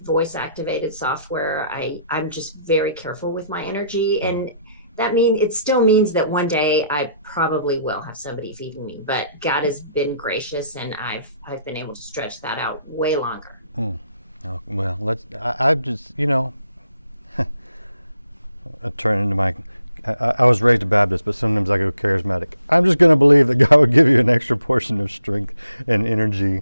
activated software. I'm just very careful with my energy. And it still means that one day I probably will have somebody feeding me, but God has been gracious, and I've been able to stretch that out way longer. Oh, well, I've just, I turn into my, I was raised a Baptist, but sometimes I go charismatic. I'm just going to believe that God would give you an extra portion of strength and energy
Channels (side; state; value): both; inverted; correlation -0.73